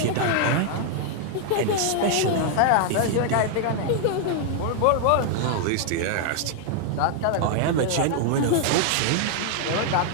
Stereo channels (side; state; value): both; different; correlation 0.00